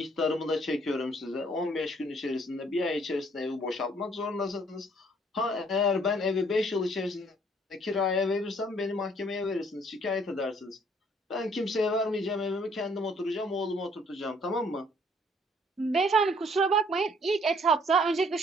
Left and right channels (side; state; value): both; normal; correlation 0.62